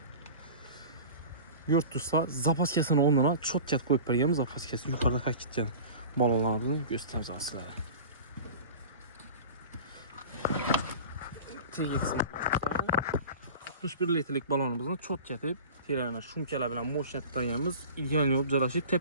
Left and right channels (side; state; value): both; inverted; correlation -0.37